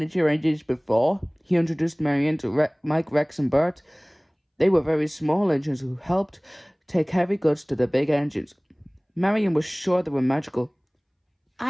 engines before? He introduced Marion to Mike, Rex and Bert. They were very small engines who helped take heavy goods to the big engines. Marion was sure they were magical.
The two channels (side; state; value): both; identical; correlation 1.00